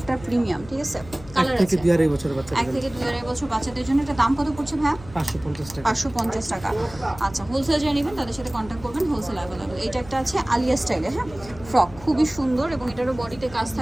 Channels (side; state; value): left; noise; hum, 18 dB below the sound